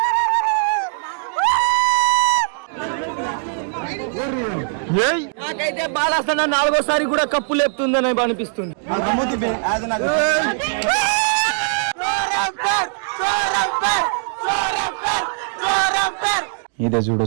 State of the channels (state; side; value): silent; left; digital silence